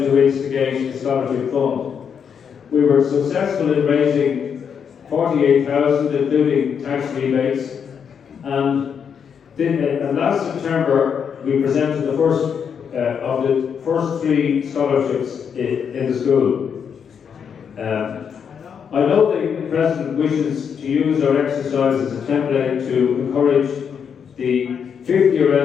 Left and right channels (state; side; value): quieter; right; 7.2 dB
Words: to instigate a scholarship fund. We were successful in raising 48,000, including tax rebates, and last September we presented the first of the first 3 scholarships in the school. I know the President wishes to use our exercise as a template to encourage the 50-year